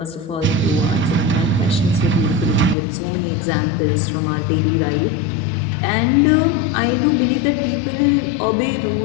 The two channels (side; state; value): right; drops out; at 2.8 s